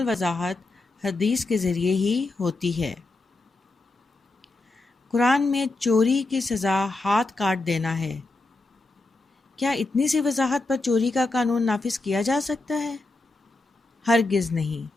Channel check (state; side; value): quieter; right; 3.1 dB